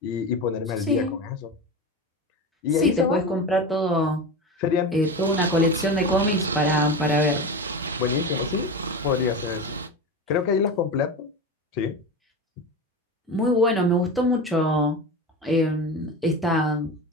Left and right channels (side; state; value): both; normal; correlation 0.25